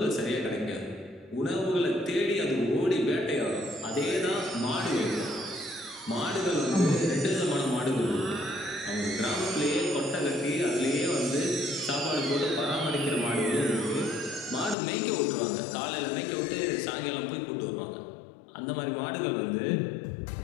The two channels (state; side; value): drops out; right; at 14.8 s